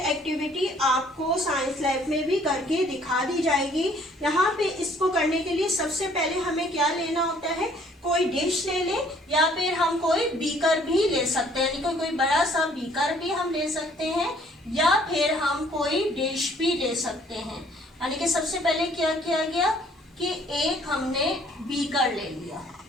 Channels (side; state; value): both; normal; correlation 0.59